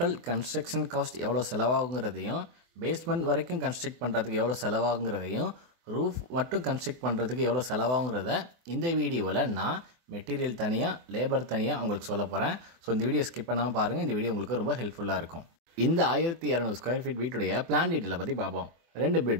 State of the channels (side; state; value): left; late; 24 ms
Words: construction cost எவ்வளோ செலவாகுங்கிறதையும், பேஸ்மெண்ட் வரைக்கும் கன்ஸ்ட்ரக்ட் பண்ணுறதுக்கு எவ்வளோ செலவாகுங்கிறதையும், ரூஃப் மட்டும் கன்ஸ்ட்ரக்ட் பண்ணுறதுக்கு எவ்வளோ செலவாகுங்கிறத இந்த வீடியோவில் நான் மெட்டீரியல் தனியாக, லேபர் தனியாக உங்களுக்கு சொல்ல போகிறேன். ஸோ இந்த வீடியோ ஸ்கிப் பண்ணாமல் பாருங்கள். இந்த வீடியோ உங்களுக்கு ரொம்ப ஹெல்ப்ஃபுல்லாக இருக்கும். இந்த 1200 ஸ்கொயர் ஃபீட் வீட்டுடைய பிளான் டீட்டெயிலை பற்றி பார்ப்போம். 2